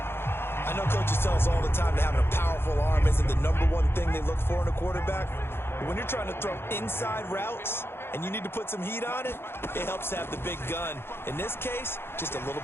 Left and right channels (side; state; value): right; late; 0.11 ms